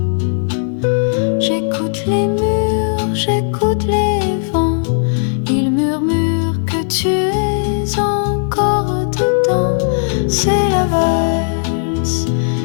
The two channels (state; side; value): silent; right; digital silence